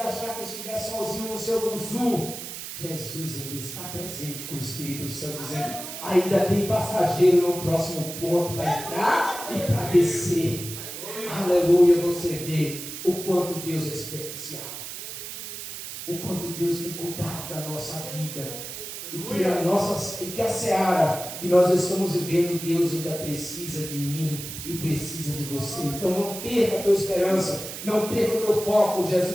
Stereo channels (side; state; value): right; noise; hiss, 9 dB below the sound